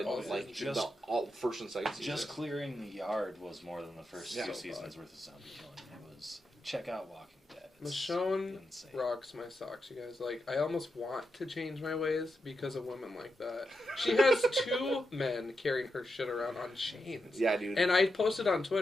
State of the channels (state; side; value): normal; both; correlation 0.86